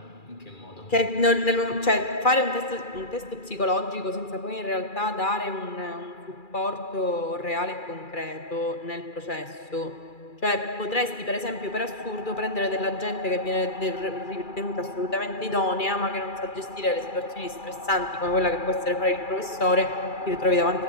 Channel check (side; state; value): right; late; 2.4 ms